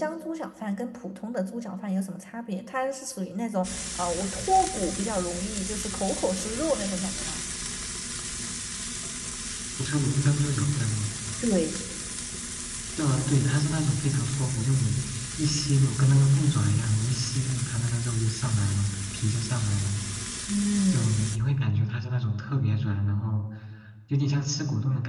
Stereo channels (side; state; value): both; identical; correlation 1.00